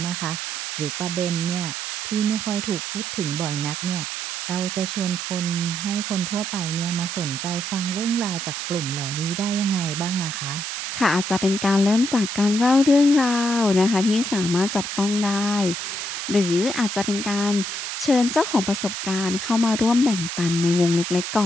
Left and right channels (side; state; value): right; noise; hiss, 5 dB below the sound